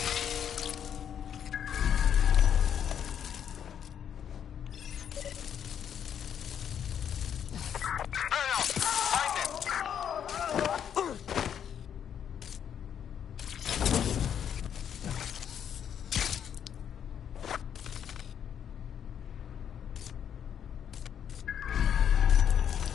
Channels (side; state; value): right; quieter; 8.7 dB